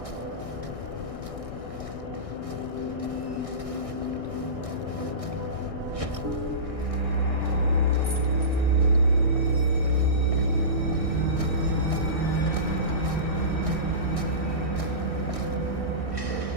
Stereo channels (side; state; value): left; late; 1.6 ms